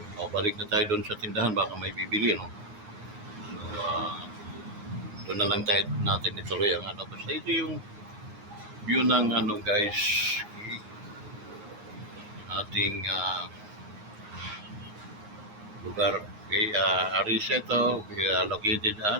Balik na tayo doon sa tindahan, baka may bibili, no? So, doon na lang tayo natin ituloy ang ano. Basta ito yung view ng ano guys, ating lugar. Okay, Arisa ito, located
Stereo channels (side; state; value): left; late; 9.6 ms